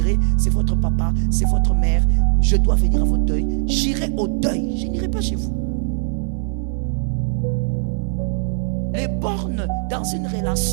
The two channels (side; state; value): left; silent; 61 dB below the other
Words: c'est votre papa, c'est votre mère, je dois venir à votre deuil, j'irai au deuil, je n'irai pas chez vous. Les bornes dans une